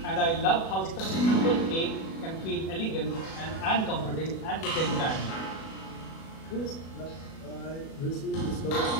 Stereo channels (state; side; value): late; right; 37 ms